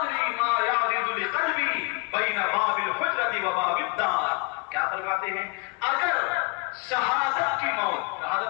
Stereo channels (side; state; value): right; quieter; 29.2 dB